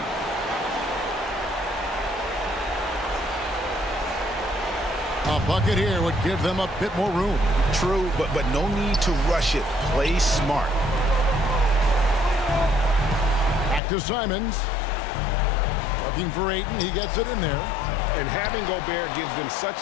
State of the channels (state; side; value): drops out; right; at 13.8 s